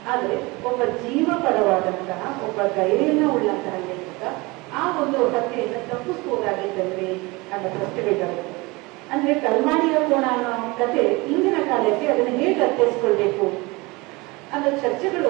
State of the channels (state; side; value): quieter; left; 24.4 dB